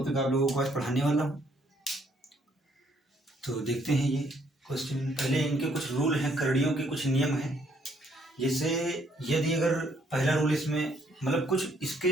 आप लोगों को आज पढ़ाने वाला हूँ। तो देखते हैं ये क्वेश्चन। पहले इनके कुछ रूल हैं, करड़ियों के कुछ नियम हैं। जैसे यदि अगर पहला रूल इसमें मतलब कुछ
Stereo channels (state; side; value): normal; both; correlation 0.68